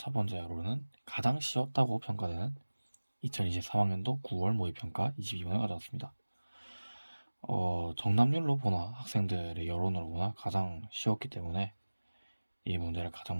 번째로는 가장 쉬웠다고 평가되는 2023학년도 9월 모의평가 22번을 가져왔습니다. 정답률로 보나 학생들의 여론으로 보나 가장 쉬웠기 때문에 이 문제를 가장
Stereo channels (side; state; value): both; inverted; correlation -1.00